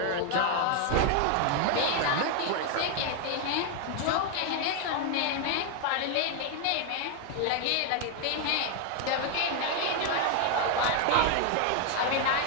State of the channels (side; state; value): both; different; correlation 0.00